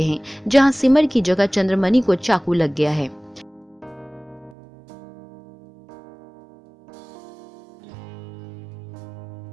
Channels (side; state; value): left; drops out; at 4.5 s